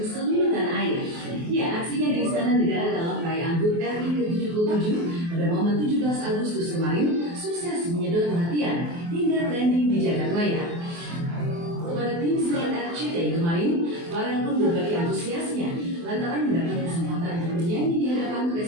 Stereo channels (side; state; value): left; late; 24 ms